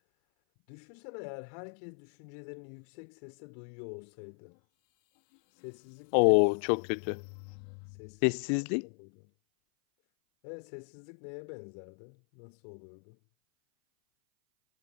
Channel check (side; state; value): right; silent; 55 dB below the other